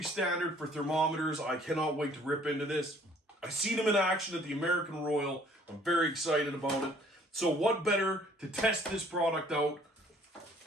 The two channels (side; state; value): both; normal; correlation 0.58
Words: standard for thermometers. I cannot wait to rip into this. I've seen them in action at the American Royal. I'm very excited about it. So what better to test this product out